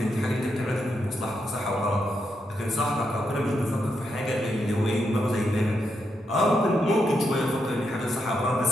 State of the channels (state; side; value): normal; both; correlation 0.82